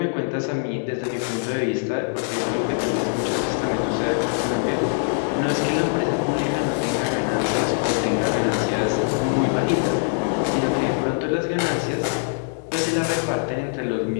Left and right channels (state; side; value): silent; right; 63 dB below the other